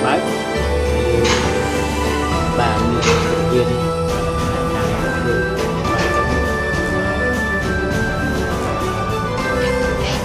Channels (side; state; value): both; identical; correlation 1.00